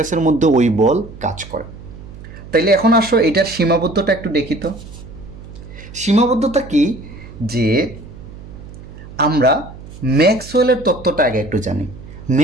মধ্যে ওই বল কাজ করে। তাইলে এখন আসো এটার সীমাবদ্ধতা একটু দেখি তো। সীমাবদ্ধতা কি, যে আমরা ম্যাক্সওয়েলের তত্ত্বটা আগে একটু জানি।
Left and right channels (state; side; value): noise; right; hum, 16 dB below the sound